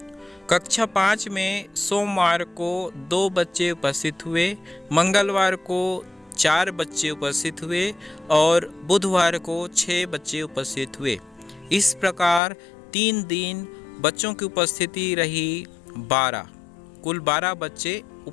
कक्षा 5 में सोमवार को 2 बच्चे उपस्थित हुए, मंगलवार को 4 बच्चे उपस्थित हुए और बुधवार को 6 बच्चे उपस्थित हुए। इस प्रकार 3 दिन बच्चों की उपस्थिति रही 12, कुल 12 बच्चे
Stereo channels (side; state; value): right; drops out; at 12.4 s